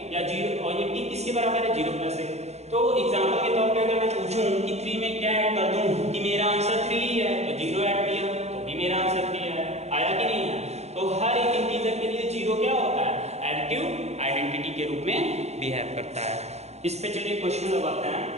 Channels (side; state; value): left; late; 0.31 ms